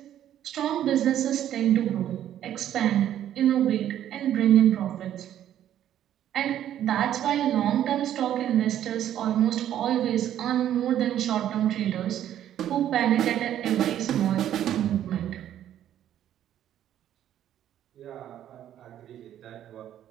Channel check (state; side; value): quieter; left; 11.2 dB